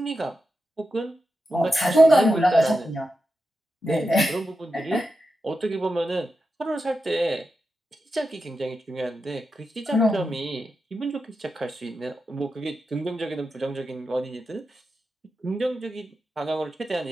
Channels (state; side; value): normal; both; correlation 0.89